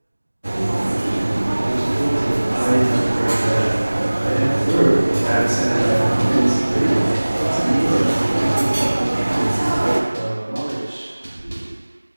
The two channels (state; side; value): inverted; both; correlation -1.00